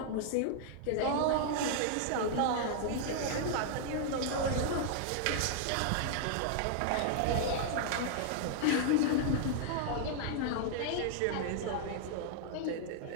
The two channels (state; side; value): different; both; correlation -0.01